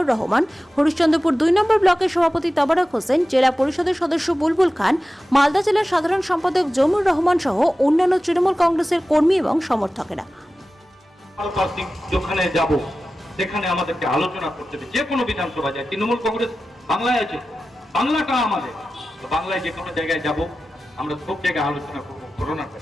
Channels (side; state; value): both; normal; correlation 0.94